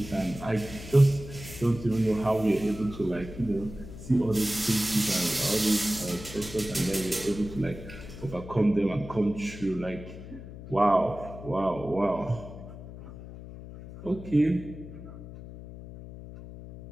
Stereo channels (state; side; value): noise; left; hum, 13 dB below the sound